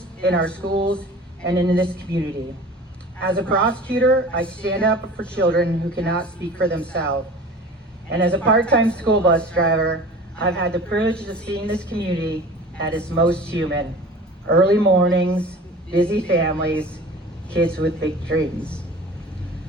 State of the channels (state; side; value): normal; both; correlation 0.40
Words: in our schools, and in this community. As a prosecutor, I stand up for children who cannot speak for themselves. And as a part-time school bus driver, I've had the privilege of seeing this community at its most human. early mornings, busy families, kids with big dreams,